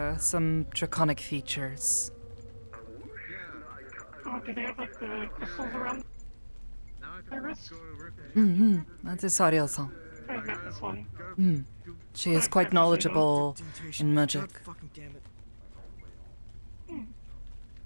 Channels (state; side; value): inverted; both; correlation -1.00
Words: some draconic features. Oh, do they have like the crystals around their wrist? That is Sario-san. I met this one. She is quite knowledgeable in magic. Fucking damn it.